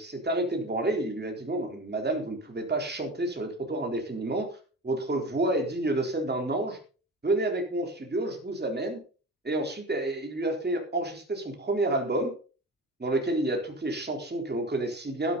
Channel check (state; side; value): normal; both; correlation 0.32